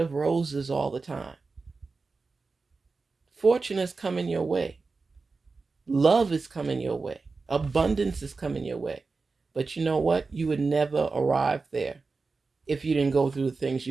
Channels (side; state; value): left; quieter; 4.2 dB